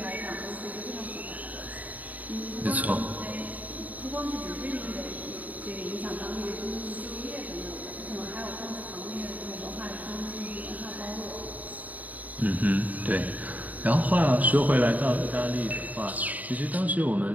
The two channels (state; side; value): late; left; 0.075 ms